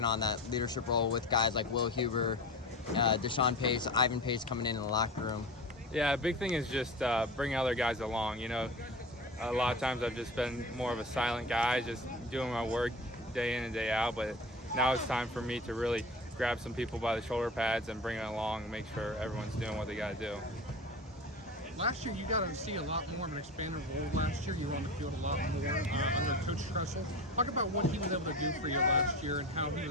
on that leadership role with guys like Will Huber, Deshaun Pace, Ivan Pace coming in the locker room. Yeah, a big thing is just bringing other guys along. A lot of times I've just been more of a silent guy, just doing my work day in and day out, but now it's time for me to really grab some people by the shoulder pads and bring it along and make sure everyone's doing what they got to do. Last year, you got to see a lot more of an expanded role last year. You were on the field a lot more under Coach Tressel. Talk about what he was able to do for you last year and how he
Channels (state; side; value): normal; both; correlation 0.32